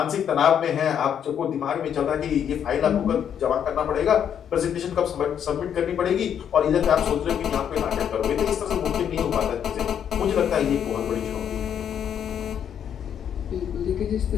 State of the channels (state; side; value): quieter; right; 8.8 dB